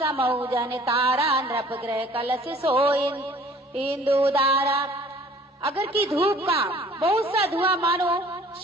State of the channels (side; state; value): both; normal; correlation 0.52